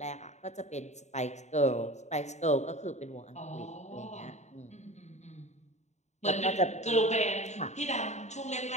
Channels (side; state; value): right; late; 0.33 ms